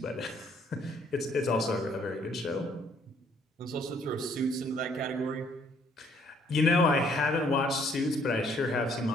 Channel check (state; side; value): normal; both; correlation 0.64